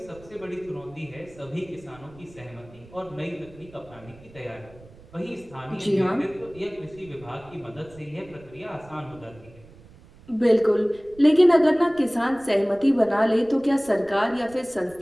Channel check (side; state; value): right; noise; rumble, 23 dB below the sound